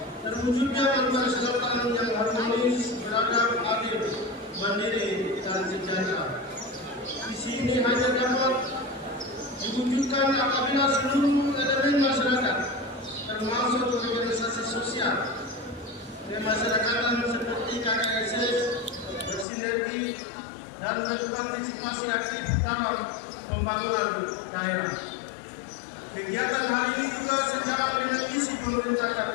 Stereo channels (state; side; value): drops out; right; at 19.5 s